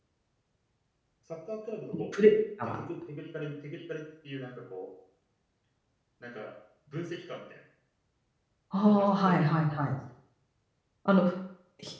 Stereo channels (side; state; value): both; identical; correlation 1.00